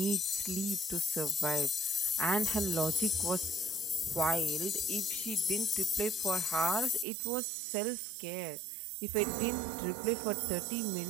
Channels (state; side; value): drops out; left; at 7.1 s